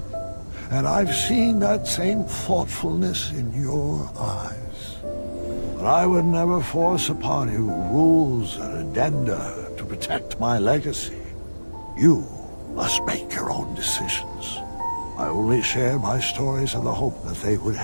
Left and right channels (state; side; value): inverted; both; correlation -1.00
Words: and I've seen that same thoughtfulness in your eyes. But I would never force upon you rules and addenda to protect my legacy. You must make your own decisions. I only share my stories in the hope that they would